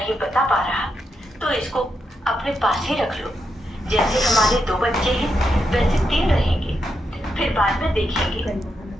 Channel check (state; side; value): normal; both; correlation 0.83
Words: बता पा रहा तो इसको अपने पास ही रख लो। जैसे हमारे 2 बच्चे हैं वैसे 3 रहेंगे। फिर बाद में देखेंगे,